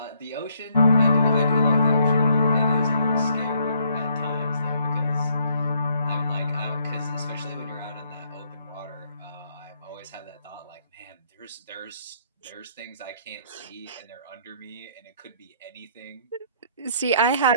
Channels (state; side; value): inverted; both; correlation -0.68